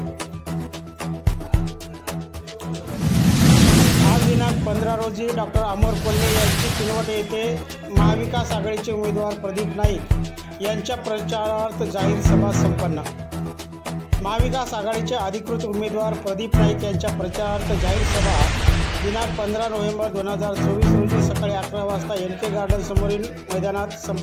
आज दिनांक 15 रोजी डॉक्टर अमोर कोल्हे यांची किनवट येथे महाविकास आघाडीचे उमेदवार प्रदीप नाईक यांच्या प्रचारार्थ जाहीर सभा संपन्न। महाविकास आघाडीचे अधिकृत उमेदवार प्रदीप नाईक यांच्या प्रचारार्थ जाहीर सभा दिनांक 15 नोव्हेंबर 2024 रोजी सकाळी 11 वाजता NK गार्डन समोरील मैदानात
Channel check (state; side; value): identical; both; correlation 1.00